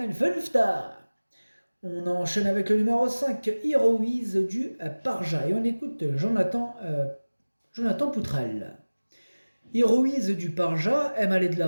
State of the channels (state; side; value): inverted; both; correlation -1.00